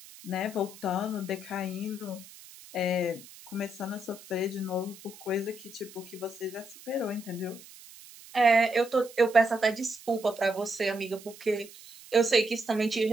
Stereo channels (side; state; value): right; noise; hiss, 19 dB below the sound